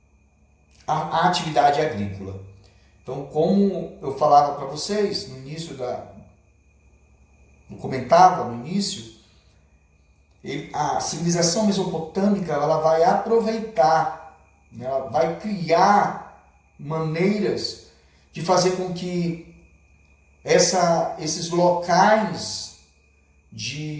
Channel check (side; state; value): both; identical; correlation 1.00